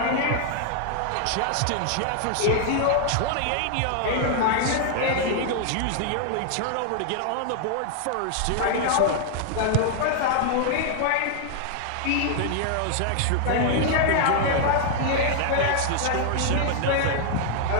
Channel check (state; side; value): different; both; correlation 0.00